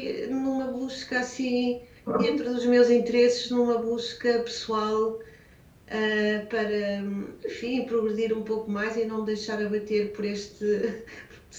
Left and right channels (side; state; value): both; identical; correlation 1.00